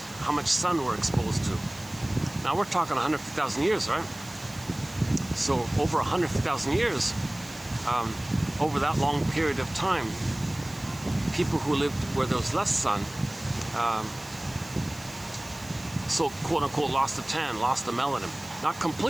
how much sun we're exposed to. Now, we're talking 150,000 years, right? So, over 150,000 years, over that long period of time, people who lived where there was less sun, so quote-unquote lost the tan, lost the melanin. Not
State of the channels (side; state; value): right; noise; hiss, 19 dB below the sound